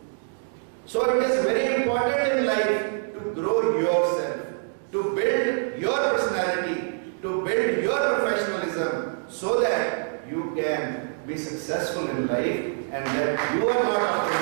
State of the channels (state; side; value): silent; left; digital silence